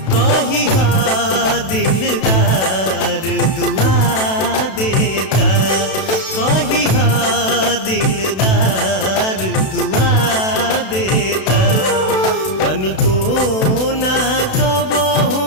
कही हा दिलदार दुआ देता, कही हा दिलदार दुआ देता। तनिको ना कबहू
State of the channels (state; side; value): late; right; 32 ms